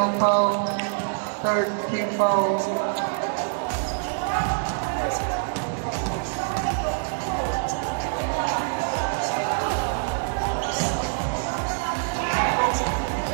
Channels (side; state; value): left; silent; 62 dB below the other